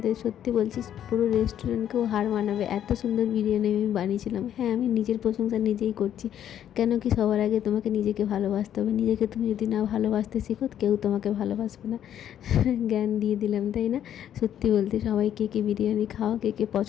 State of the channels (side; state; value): right; quieter; 10.3 dB